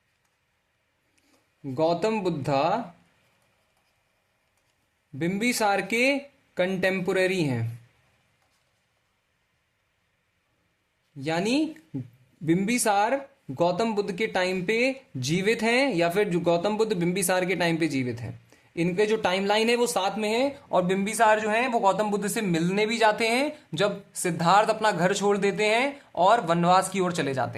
बुद्धा बिंबिसार के कंटेम्पोरेरी हैं, यानी बिंबिसार गौतम बुद्ध के टाइम पे जीवित हैं, या फिर जो गौतम बुद्ध बिंबिसार के टाइम पे जीवित हैं। इनके जो टाइमलाइन है वो साथ में है। और बिंबिसार जो है वो गौतम बुद्ध से मिलने भी जाते हैं जब सिद्धार्थ अपना घर छोड़ देते हैं और वनवास की ओर चले जाते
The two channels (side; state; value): both; identical; correlation 1.00